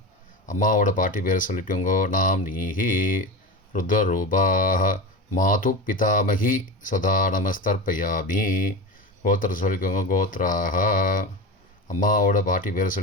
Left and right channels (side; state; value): both; normal; correlation 0.25